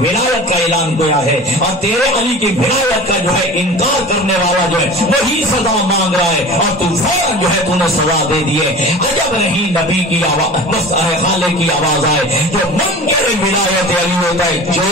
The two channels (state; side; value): normal; both; correlation 0.37